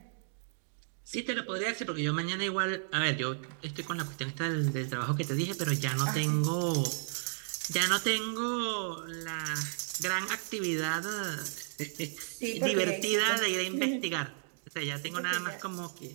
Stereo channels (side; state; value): left; silent; digital silence